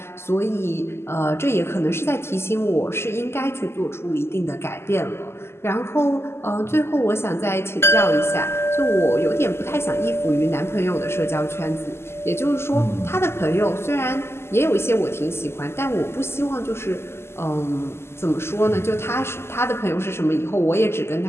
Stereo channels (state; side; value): late; right; 0.12 ms